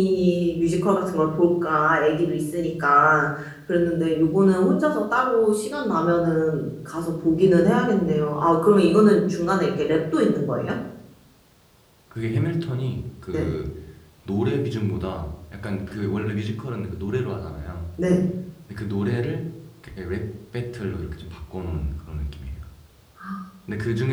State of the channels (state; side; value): identical; both; correlation 1.00